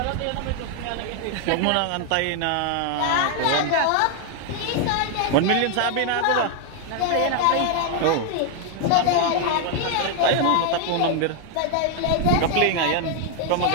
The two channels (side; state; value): both; different; correlation 0.00